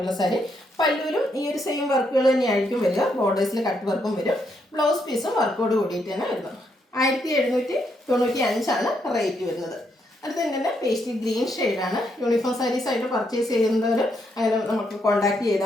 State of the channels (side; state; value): both; normal; correlation 0.77